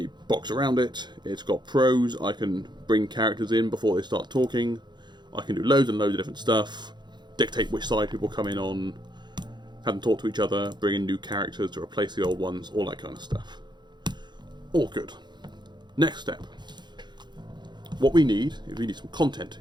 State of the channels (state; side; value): late; left; 0.21 ms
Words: box around it. It's got pros. I can bring characters in before they start talking. I can do loads and loads of different stuff. Dictate which side people come in on. Have them talk to each other. Bring in new characters to replace the old ones. All that kind of stuff. All good. Next step. What we need is we need some content